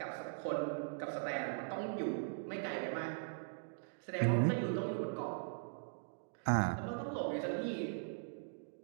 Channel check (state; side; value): silent; left; digital silence